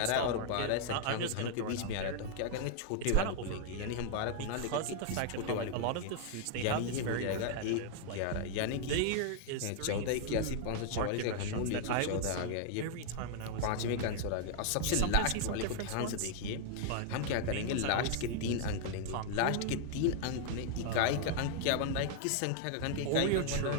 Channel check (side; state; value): both; different; correlation 0.00